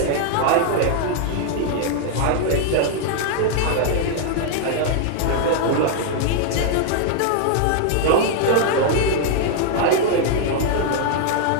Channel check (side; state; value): both; different; correlation 0.00